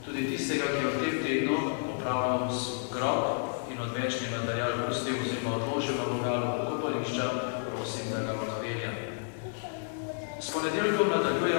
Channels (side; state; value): right; silent; 57 dB below the other